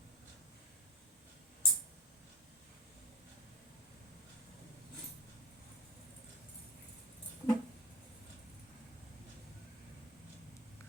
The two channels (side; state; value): both; normal; correlation 0.25